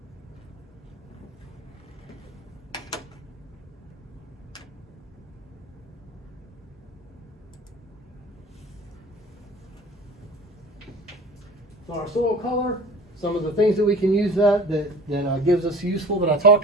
So our soil color, some of the things that we can use that gives us useful that I talked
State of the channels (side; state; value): both; normal; correlation 0.42